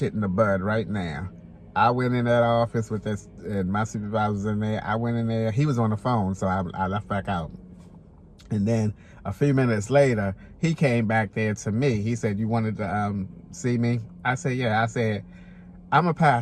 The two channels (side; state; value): both; identical; correlation 1.00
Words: in the bud right now. I went in that office with this, and my supervisor was in there. I went in there. He was on the phone, so I left back out. And then a few minutes later, he came back there to me. He said, you wanted to see me? I said, yeah. I said, I'm going to